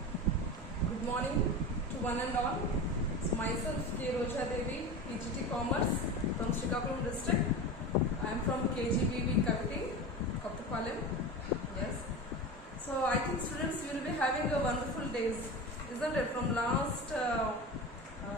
good morning to one and all. It's myself K. Roja Devi, PGT Commerce from Srikakulam district. I am from KGBV Kaviti, Kottapalam. Yes. So I think students, you will be having a wonderful days, isn't it? From last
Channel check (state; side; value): normal; both; correlation 0.27